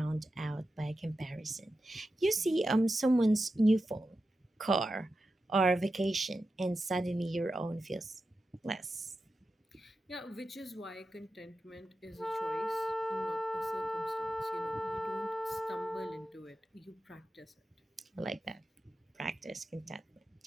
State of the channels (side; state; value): both; normal; correlation 0.91